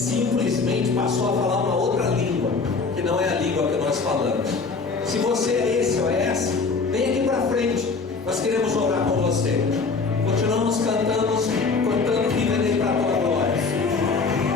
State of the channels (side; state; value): right; quieter; 4.5 dB